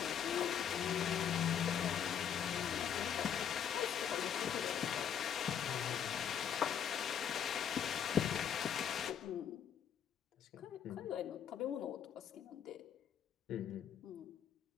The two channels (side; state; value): right; quieter; 8.6 dB